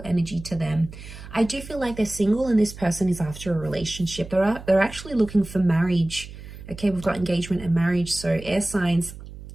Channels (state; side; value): noise; right; hum, 14 dB below the sound